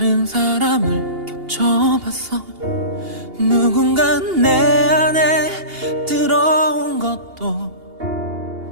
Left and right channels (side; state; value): left; late; 2.8 ms